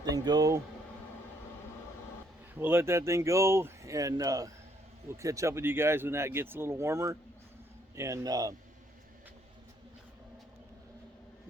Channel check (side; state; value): both; normal; correlation 0.68